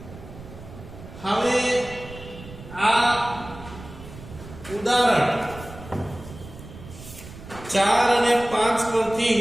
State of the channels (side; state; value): right; noise; rumble, 15 dB below the sound